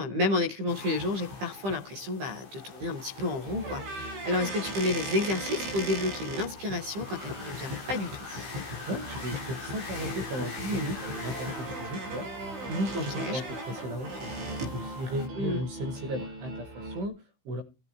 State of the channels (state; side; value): late; left; 15 ms